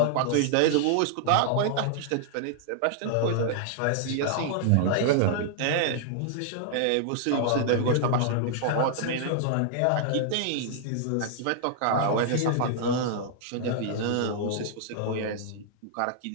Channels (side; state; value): both; different; correlation -0.01